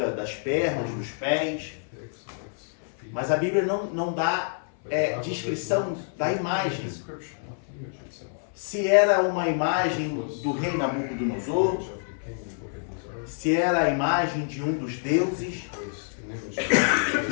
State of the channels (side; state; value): right; silent; 60 dB below the other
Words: das pernas, dos pés. Mas a Bíblia não dá descrição da imagem. Se era uma imagem do rei Nabucodonosor, se era a imagem de um dos deuses,